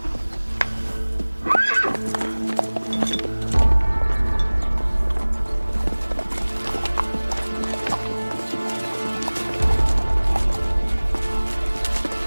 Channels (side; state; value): both; inverted; correlation -1.00